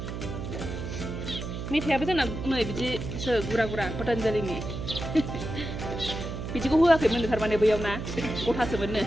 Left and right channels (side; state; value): right; noise; hum, 6 dB below the sound